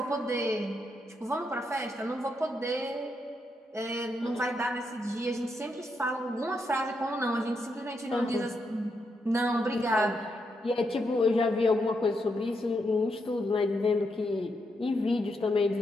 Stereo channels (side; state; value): both; normal; correlation 0.81